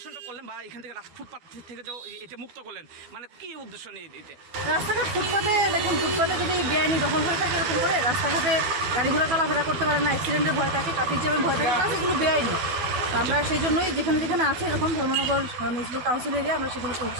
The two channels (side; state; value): left; late; 12 ms